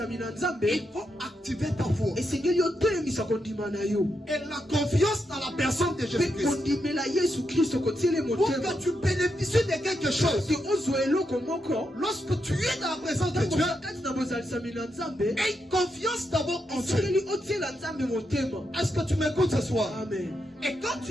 il faut activer ta foi et la confiance dans la personne de Jésus-Christ pour que tu bénéficies de quelque chose. Lorsque tu es dans la présence de Dieu, aie confiance d'abord en Dieu. Est-ce que tu m'écoutes ce soir? Amen. Et quand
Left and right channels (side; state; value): both; normal; correlation 0.83